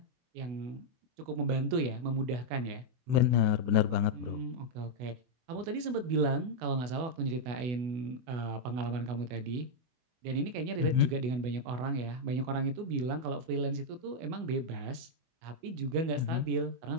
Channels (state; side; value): late; left; 24 ms